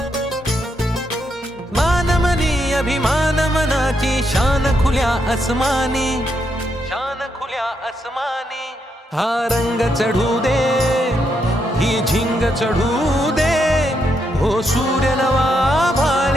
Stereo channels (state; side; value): normal; both; correlation 0.79